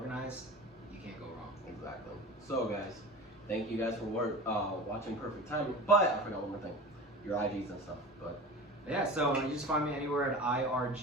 You can't go wrong. Exactly. So, guys, thank you guys for watching Perfect Timing. But I forgot one more thing. Your IGs and stuff. But Yeah, so you just find me anywhere at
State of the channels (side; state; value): both; normal; correlation 0.34